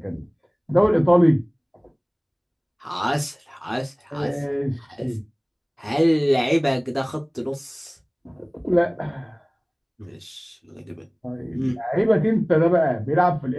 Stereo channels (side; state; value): both; identical; correlation 1.00